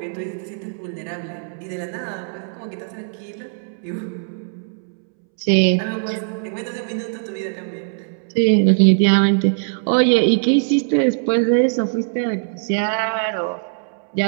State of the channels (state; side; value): silent; left; 65 dB below the other